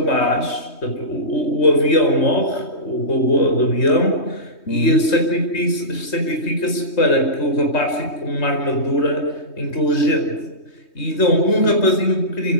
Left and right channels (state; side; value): late; right; 3.2 ms